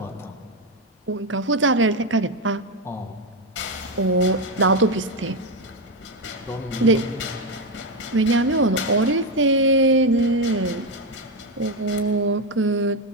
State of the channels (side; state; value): both; normal; correlation 0.07